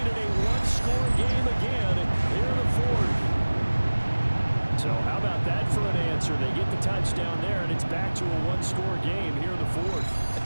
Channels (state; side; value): inverted; both; correlation -1.00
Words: it a one-score game again here in the 4th. So how about that for an answer? They get the touchdown there, and it's back to a one-score game here in the 4th.